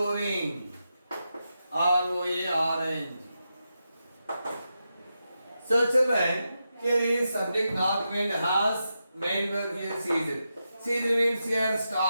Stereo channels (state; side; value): inverted; both; correlation -0.88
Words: ROARNG. So children, here is subject north wind has, main verb here ceased. Ceased means here